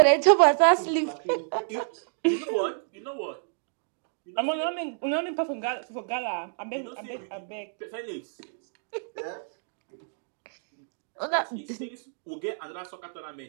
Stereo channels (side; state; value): left; silent; digital silence